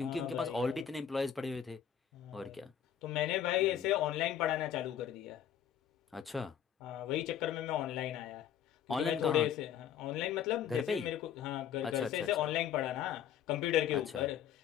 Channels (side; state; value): right; quieter; 9.4 dB